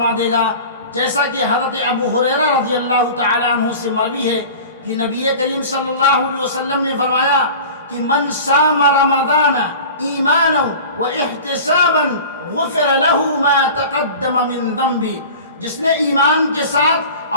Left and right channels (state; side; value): inverted; both; correlation -0.38